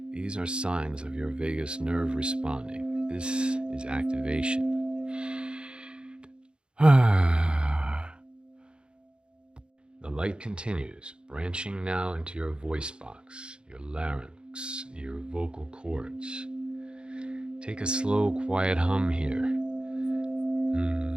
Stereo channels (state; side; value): late; left; 0.053 ms